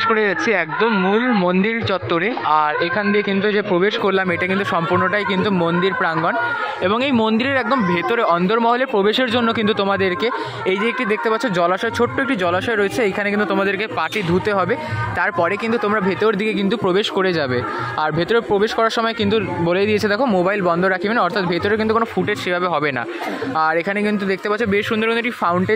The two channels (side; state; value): both; identical; correlation 1.00